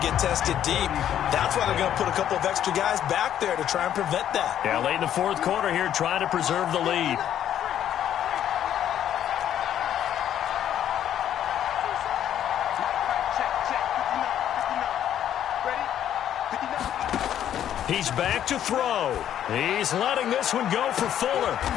get tested deep. That's why they're going to put a couple of extra guys back there to try and prevent that. Yeah, late in the fourth quarter here, trying to preserve the lead. He's back to throw. He's letting this one go for Fuller.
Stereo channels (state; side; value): quieter; right; 10.6 dB